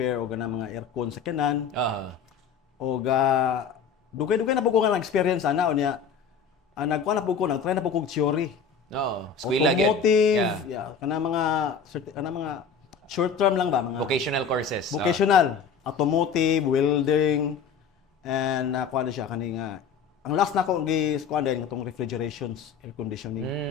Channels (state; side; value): quieter; right; 6.1 dB